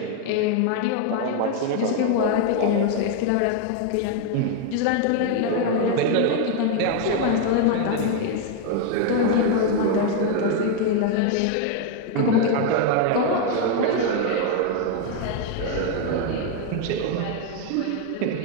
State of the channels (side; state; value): both; different; correlation 0.01